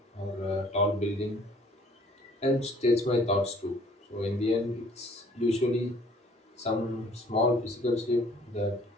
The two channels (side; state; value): both; normal; correlation 0.56